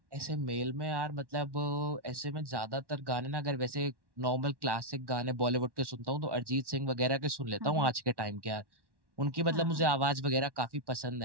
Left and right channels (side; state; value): left; late; 1.1 ms